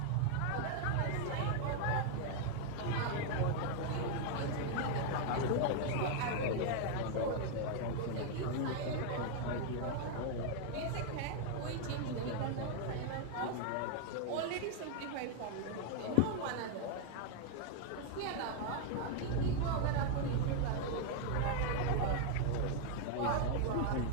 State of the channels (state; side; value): different; both; correlation 0.00